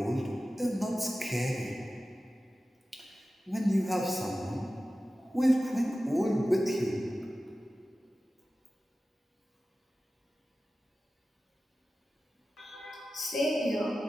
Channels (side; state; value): both; normal; correlation 0.95